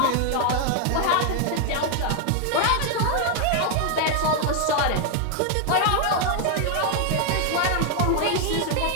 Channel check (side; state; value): both; different; correlation 0.00